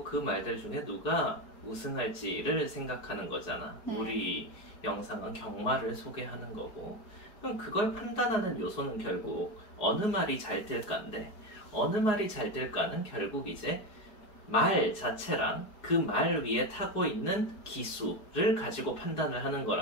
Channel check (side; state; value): right; late; 4.7 ms